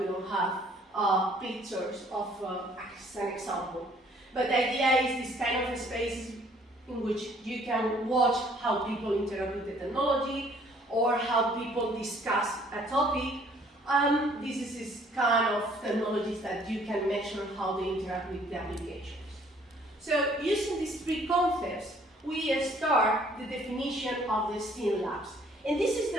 don't have pictures of as an example. But the idea is this kind of spaces in which you can watch how people interact with the technology or how people discuss a topic. This is kind of technologies that you can measure how they interact with the applications. So using these three concepts, we start the definition of the STEAM labs. And this is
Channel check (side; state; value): both; normal; correlation 0.60